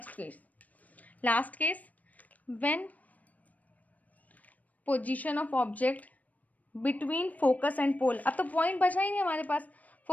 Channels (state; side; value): late; right; 0.074 ms